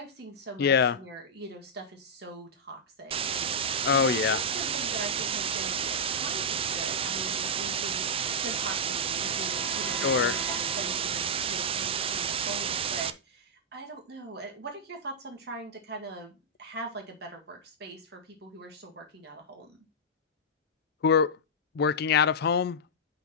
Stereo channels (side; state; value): both; normal; correlation -0.08